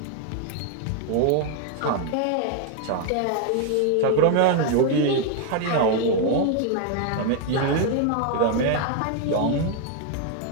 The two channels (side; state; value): both; different; correlation 0.01